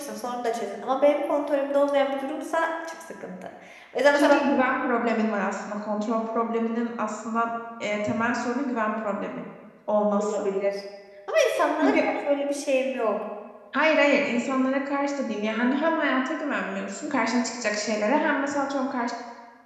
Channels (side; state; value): both; identical; correlation 1.00